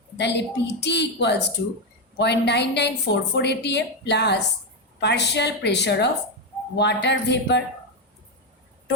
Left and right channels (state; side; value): normal; both; correlation 0.07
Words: তাহলে PT equals to 0.9944 atm plus partial pressure of water vapour.